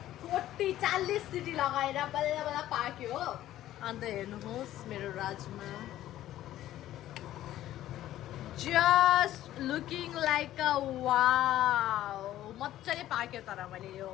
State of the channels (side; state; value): right; quieter; 13.5 dB